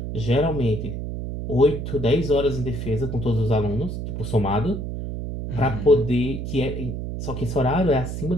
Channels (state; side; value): noise; right; hum, 5 dB below the sound